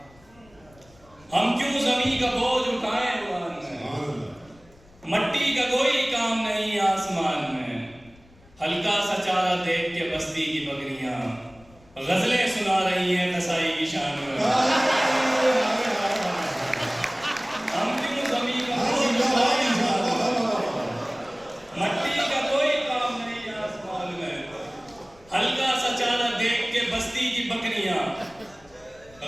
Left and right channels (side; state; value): left; noise; rumble, 27 dB below the sound